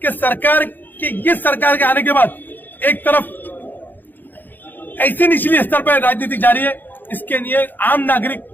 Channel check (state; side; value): late; right; 0.089 ms